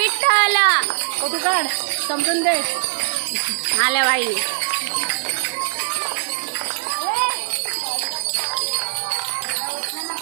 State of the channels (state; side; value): silent; left; digital silence